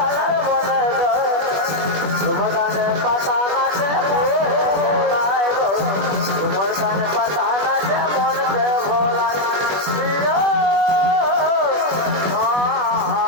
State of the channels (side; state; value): left; late; 21 ms